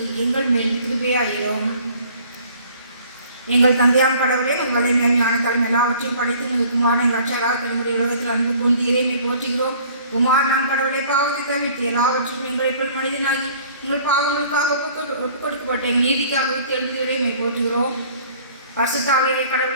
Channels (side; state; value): both; inverted; correlation -0.53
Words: எங்கள் மேல் கிருபையாயிரும். எங்கள் தந்தையாம் கடவுளே, உங்களை ஞானத்தாலும் எல்லாவற்றையும் படித்து உங்கள் குமாரன் ரட்சகராக தன்னுடைய உலகத்தில் அன்பு கொண்டு இறைமை போற்றுகிறோம். குமார் நாம் கடவுளை பாவத்தை தவிர்த்து எல்லாவற்றையும் எங்களை போல் மனிதனாகி எங்கள் பாவங்களுக்காக ஒப்புக் கொடுக்கப்பட்ட எங்கள் நீதிக்காக எழுந்து இறைமை போற்றுகிறோம். பரிசுத்த ஆவியாகிய